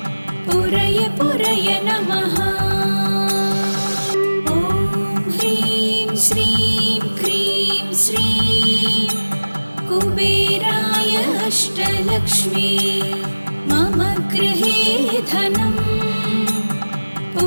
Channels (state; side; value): inverted; both; correlation -1.00